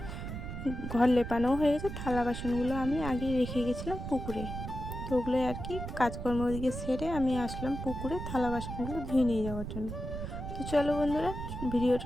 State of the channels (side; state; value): right; noise; rumble, 7 dB below the sound